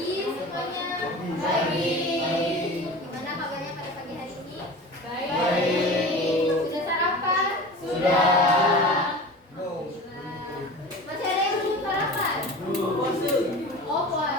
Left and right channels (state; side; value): normal; both; correlation 0.35